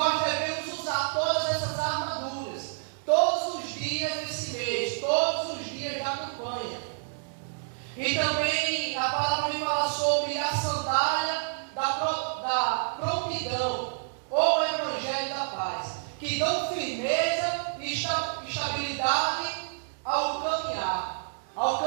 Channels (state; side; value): silent; left; digital silence